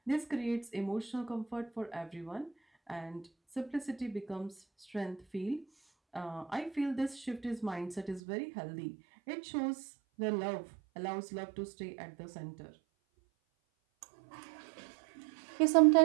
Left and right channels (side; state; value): left; drops out; at 8.2 s